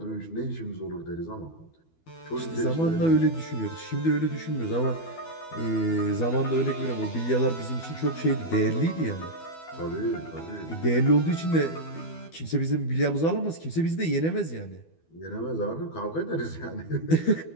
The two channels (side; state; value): right; late; 12 ms